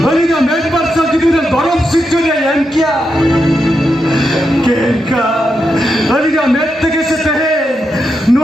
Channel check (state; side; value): normal; both; correlation 0.85